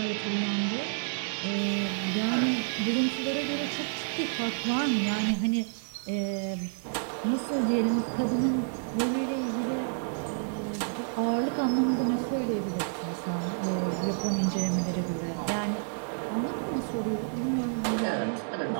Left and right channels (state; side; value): silent; left; digital silence